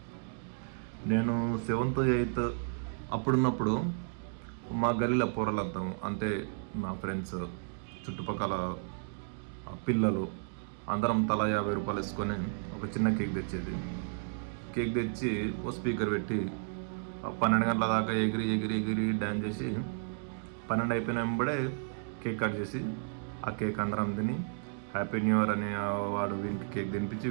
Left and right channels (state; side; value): silent; left; digital silence